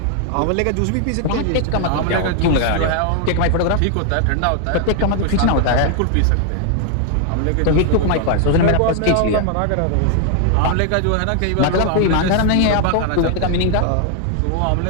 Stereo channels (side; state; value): both; different; correlation 0.00